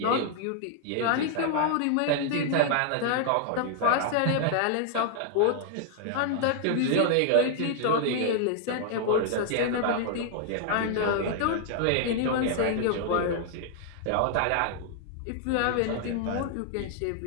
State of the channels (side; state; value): both; different; correlation 0.00